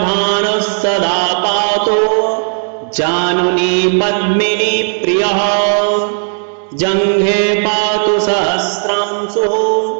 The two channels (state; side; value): silent; left; digital silence